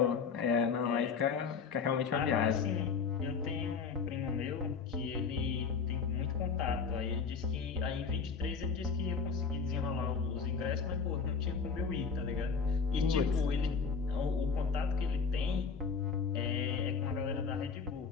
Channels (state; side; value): quieter; right; 5.5 dB